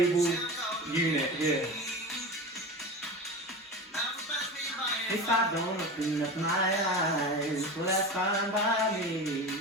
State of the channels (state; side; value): normal; both; correlation 0.29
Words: unit here. If I don't open up my eyes, well that's fine by me.